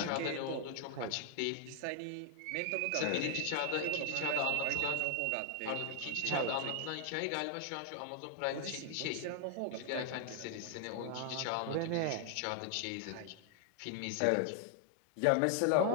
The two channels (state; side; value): different; both; correlation 0.00